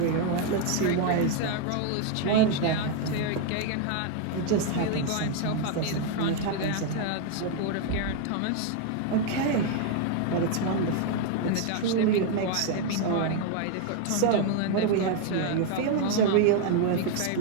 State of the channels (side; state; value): both; different; correlation 0.01